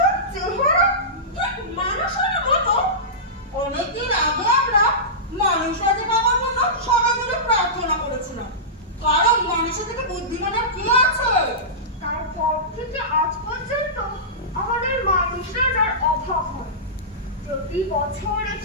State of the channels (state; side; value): normal; both; correlation -0.18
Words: চেহারা ঠিক মানুষের মতো, অনেকদিন আগে আমরা মানুষরাজে বাবার জন্য সবাই মিলে প্রার্থনা করেছিলাম, কারণ মানুষের থেকে বুদ্ধিমানের কি আছে। তারপর থেকে আজ পর্যন্ত আমাদের মানুষ রাজার অভাব হয়। প্রতি বছর